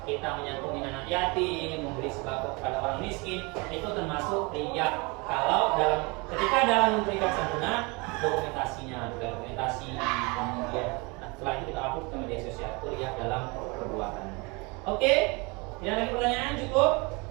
kita menyantuni anak yatim, memberi sembako kepada orang miskin, itu termasuk riya. Kalau dalam memberikan santunan, dokumentasinya, dokumentasi, kemudian setelah itu kita upload ke media sosial, itu riya dalam perbuatan. Oke, tidak lagi pertanyaan, cukup.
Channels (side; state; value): left; quieter; 27.9 dB